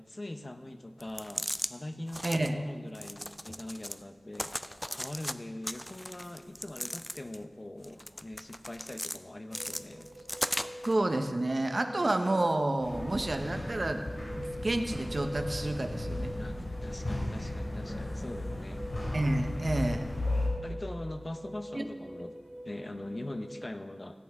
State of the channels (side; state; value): both; normal; correlation 0.97